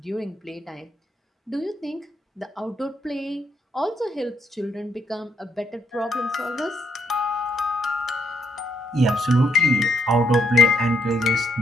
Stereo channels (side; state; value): both; normal; correlation 0.74